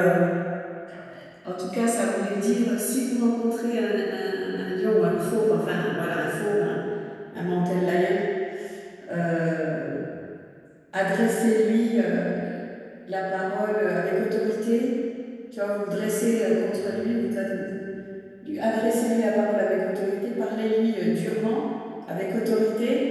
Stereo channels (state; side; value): identical; both; correlation 1.00